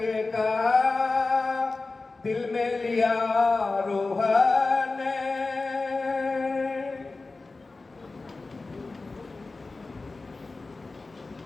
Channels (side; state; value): right; quieter; 3.6 dB